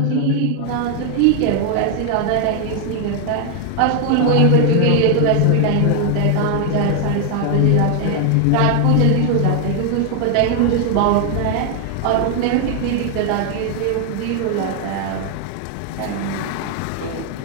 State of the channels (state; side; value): different; both; correlation 0.00